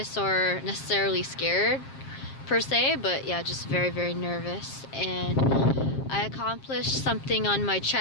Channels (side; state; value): right; late; 7.5 ms